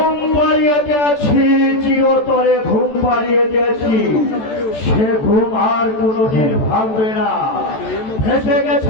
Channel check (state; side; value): late; right; 14 ms